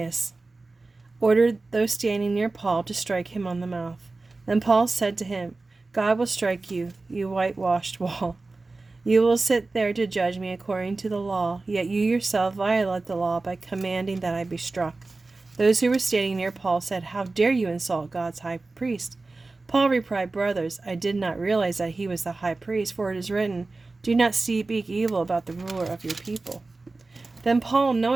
ordered those standing near Paul to strike him on the mouth. Then Paul said to him, "God will strike you, you whitewashed wall. You will sit there to judge me according to the law, yet you yourself violate the law by commanding that I be struck." Those who were standing near Paul said, "How dare you insult God's high priest?" Paul replied, "Brothers, I did not realize that he was the high priest, for it is written, 'Do not speak evil about the ruler of your people.'" Then Paul,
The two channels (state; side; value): quieter; left; 3.4 dB